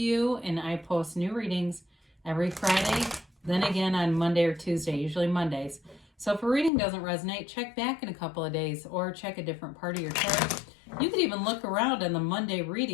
and I post new readings every Friday, then again on Monday or Tuesday, usually Mondays. So if a reading doesn't resonate, check back in a couple of days or check a different part of your chart. You could even look around on the Monday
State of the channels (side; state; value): right; drops out; at 6.7 s